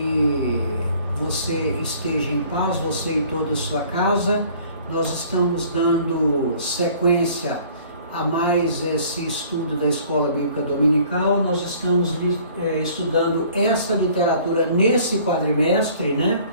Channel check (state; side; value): inverted; both; correlation -0.54